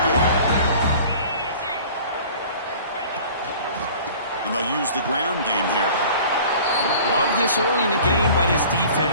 And they'll use the ground game here. Love this early in the game by this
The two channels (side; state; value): both; inverted; correlation -0.46